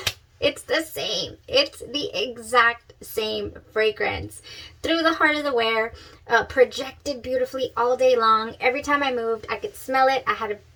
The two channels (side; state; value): both; identical; correlation 1.00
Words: it's the same. It's the exact same fragrance. Through the heart of the wear, projected beautifully all day long. Every time I moved, I could smell it. I had